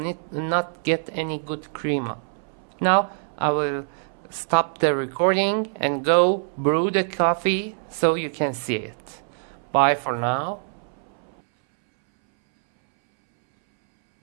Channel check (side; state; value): left; silent; 62 dB below the other